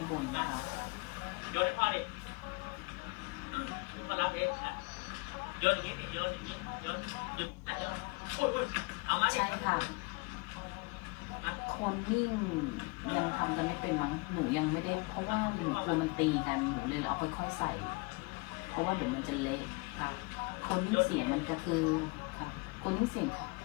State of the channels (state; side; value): quieter; right; 28.5 dB